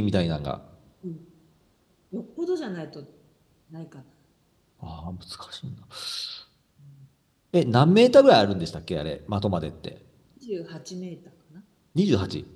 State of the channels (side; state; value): both; identical; correlation 1.00